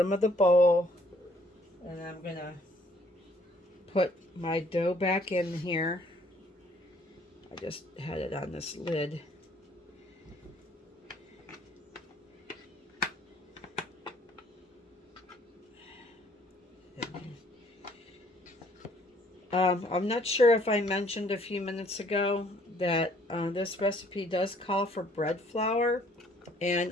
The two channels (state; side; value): normal; both; correlation 0.61